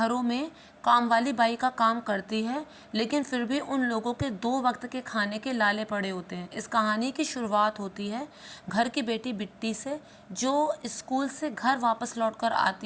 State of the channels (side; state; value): both; identical; correlation 1.00